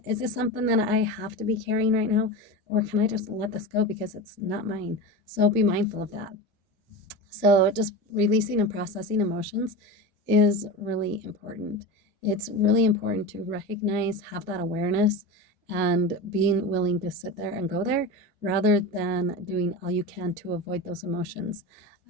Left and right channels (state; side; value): normal; both; correlation 0.26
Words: Is this something that I have to be carrying right now? Or can I just let this go because it's not mine? So be mindful of that. So just releasing and processing emotions is really important. It's really important to recognize, have that awareness, and being willing to sit there and go there rather than doing all you can to avoid those emotions.